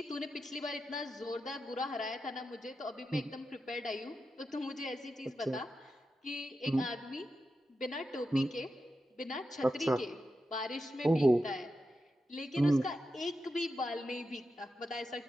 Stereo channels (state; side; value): normal; both; correlation 0.89